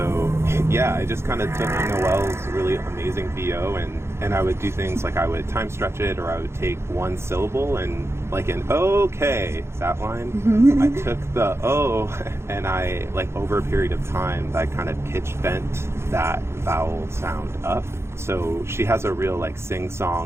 yeah, I just kind of took Noelle's really amazing VO and I would do things like I would time stretch it, or I would take one syllable and like an okay, that line. I took the O and I, like over a period of time, I kind of pitch bent that vowel sound up. So she has a real like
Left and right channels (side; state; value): left; late; 0.13 ms